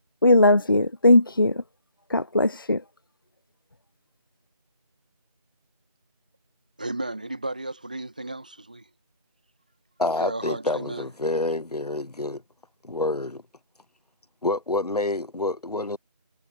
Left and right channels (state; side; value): inverted; both; correlation -0.55